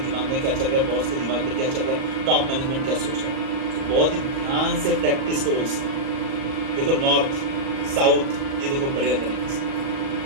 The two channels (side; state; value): left; late; 38 ms